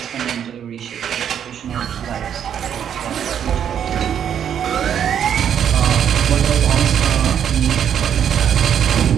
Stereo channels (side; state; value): left; quieter; 8.9 dB